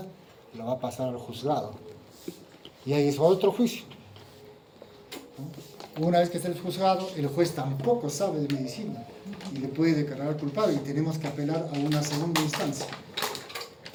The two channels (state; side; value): identical; both; correlation 1.00